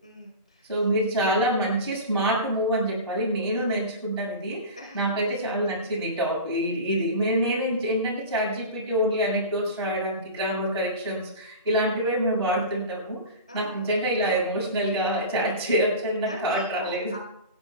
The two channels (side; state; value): both; inverted; correlation -0.30